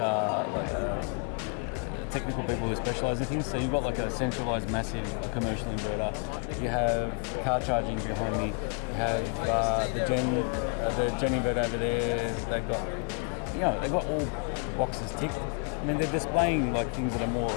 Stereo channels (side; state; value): right; quieter; 37.3 dB